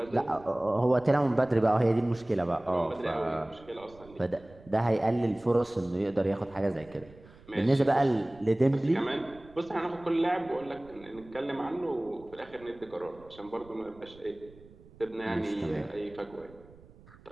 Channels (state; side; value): noise; right; rumble, 23 dB below the sound